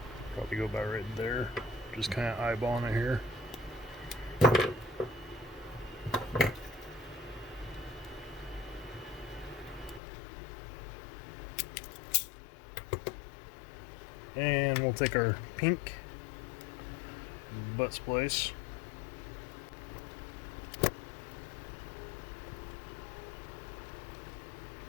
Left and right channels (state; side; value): drops out; right; at 10.0 s